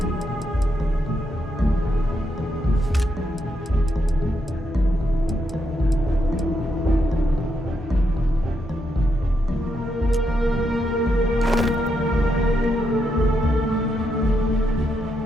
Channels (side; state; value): both; normal; correlation 0.81